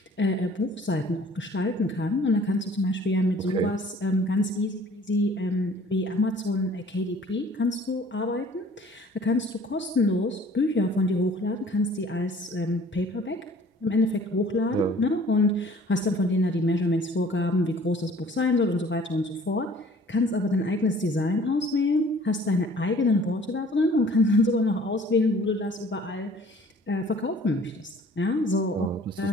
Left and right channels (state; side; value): normal; both; correlation 0.52